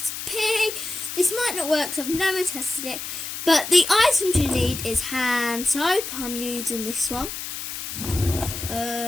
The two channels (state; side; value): noise; left; hiss, 7 dB below the sound